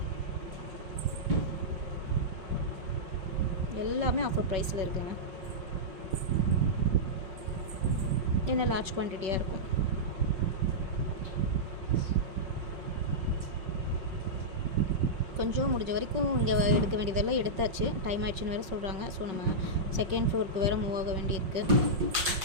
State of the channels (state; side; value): late; left; 5.5 ms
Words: எல்லாமே ஆஃபர் ப்ரைஸில் இருக்குங்க. என்ன லார்ஜ் குவான்டிட்டியாக இருக்கும். கொஞ்சம் முடிஞ்ச வரைக்கும் இங்கே எடுக்க வேண்டியதெல்லாம் எடுத்தாச்சு. டைம் ஆயிடுச்சுன்னு வேறு சொல்கிறாங்க. ஸோ நம்ம செகண்ட் ஃப்ளோருக்கு வேறு மூவ் ஆக வேண்டியிருக்கு.